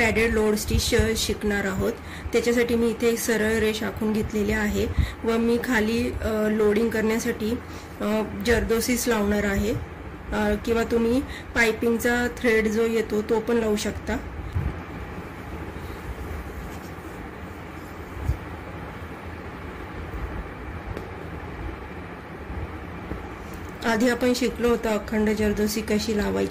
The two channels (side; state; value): both; identical; correlation 1.00